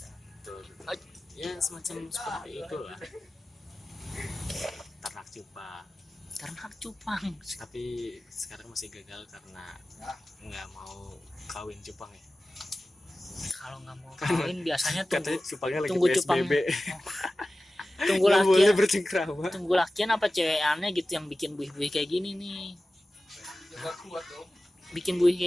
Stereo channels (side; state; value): both; normal; correlation 0.96